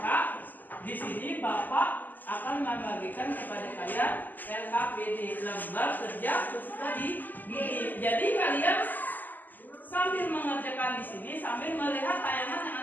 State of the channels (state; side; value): late; right; 0.086 ms